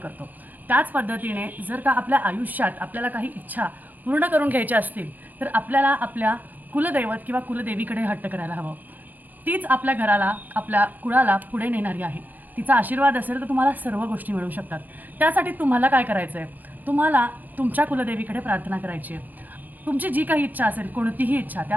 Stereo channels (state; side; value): late; left; 0.087 ms